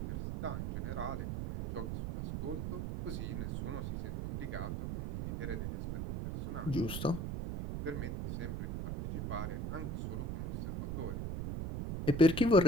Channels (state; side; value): noise; right; rumble, 3 dB below the sound